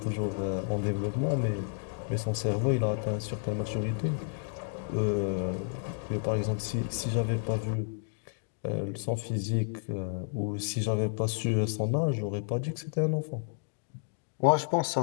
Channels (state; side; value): silent; right; 57 dB below the other